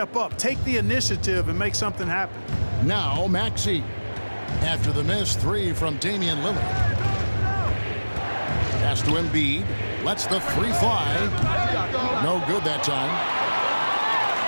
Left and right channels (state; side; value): inverted; both; correlation -1.00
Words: up, take the initiative, and make something happen. Now Maxey. After the miss 3 from Damian Lillard. Pass to Embiid. Lets the 3 fly. No good that time.